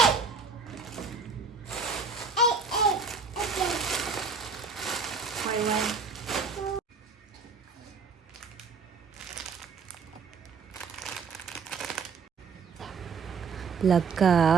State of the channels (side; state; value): left; quieter; 5.1 dB